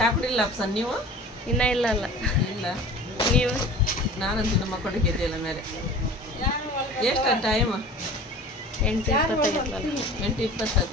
ಕುಡಿಲ್ಲ ಅಪ್ಸನ್ ನೀವು? ಇನ್ನ ಇಲ್ಲ ಅಲ್ಲ. ಇಲ್ಲ ನೀವು? ನಾನಂತೂ ನಮ್ಮ ಮಕ್ಕಳಿಗೆ ಎದ್ದಿಲ್ಲ ಮೇಲೆ. ಎಷ್ಟು ಟೈಮ್?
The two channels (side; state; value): both; normal; correlation 0.40